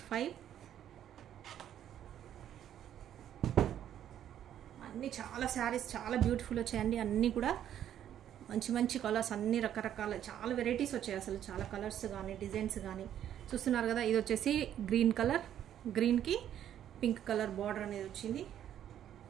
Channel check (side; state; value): left; quieter; 10.6 dB